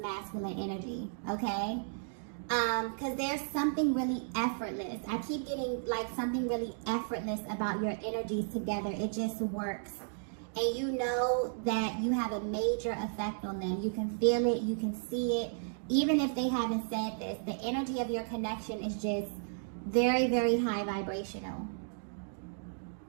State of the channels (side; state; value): left; silent; digital silence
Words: energy, okay? Because there's something really effortless. I keep getting like something really effortless about your energies together. It just works. And you know that you have a major effect on them. You can feel it. You can see it. Even if they haven't said this, the energy of your connection is just very, very high vibrational.